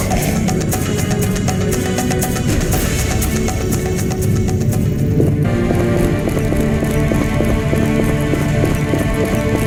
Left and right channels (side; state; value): both; identical; correlation 1.00